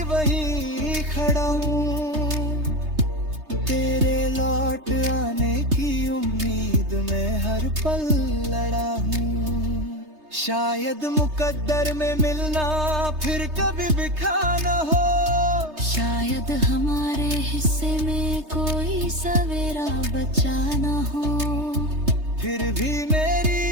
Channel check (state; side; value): late; left; 3.3 ms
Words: वहीं खड़ा हूँ, तेरे लौट आने की उम्मीद में हर पल लड़ा हूँ। शायद मुकद्दर में मिलना फिर कभी बिखा न हो, शायद हमारे हिस्से में कोई सवेरा बचा न हो। फिर भी